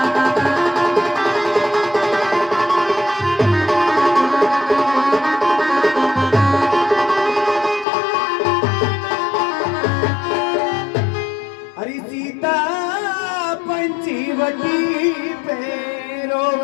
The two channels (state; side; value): drops out; right; at 7.9 s